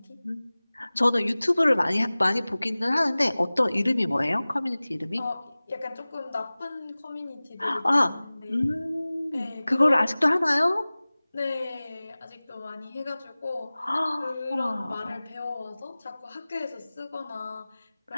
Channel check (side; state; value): both; inverted; correlation -0.99